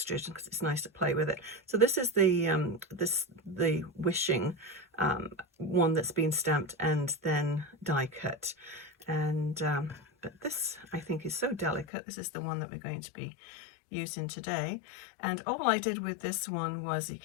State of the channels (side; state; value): right; drops out; at 11.9 s